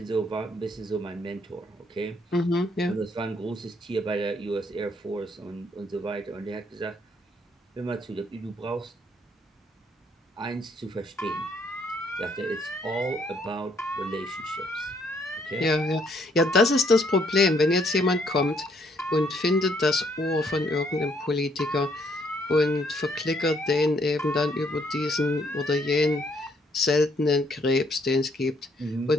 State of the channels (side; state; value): both; normal; correlation 0.69